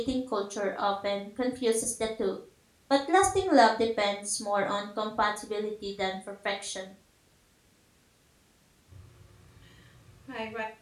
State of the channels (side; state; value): both; identical; correlation 1.00